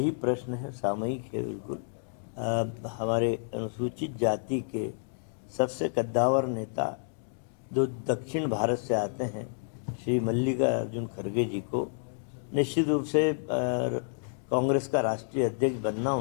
प्रश्न है, सामयिक है बिल्कुल। हमारे अनुसूचित जाति के सबसे कद्दावर नेता जो दक्षिण भारत से आते हैं, श्री मल्लिकार्जुन खड़गे जी को निश्चित रूप से कांग्रेस का राष्ट्रीय अध्यक्ष बनना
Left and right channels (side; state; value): right; silent; digital silence